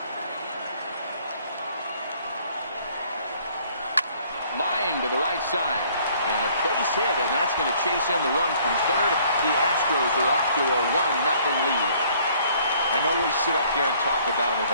Line to the right side. And a base hit, and that's going to chase in the run from third. The Astros are off to a 1-0 lead. I know we sit up here and talk about it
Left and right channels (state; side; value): inverted; both; correlation -0.60